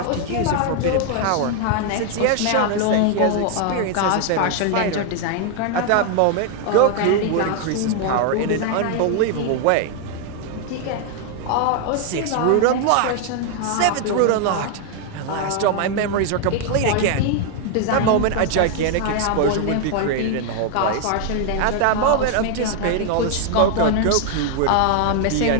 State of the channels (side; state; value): both; different; correlation 0.00